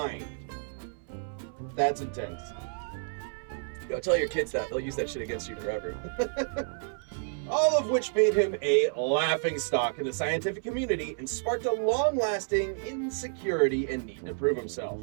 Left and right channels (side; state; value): left; silent; 58 dB below the other